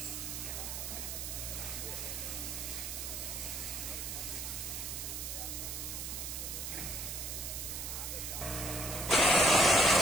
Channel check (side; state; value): right; noise; hiss, 5 dB below the sound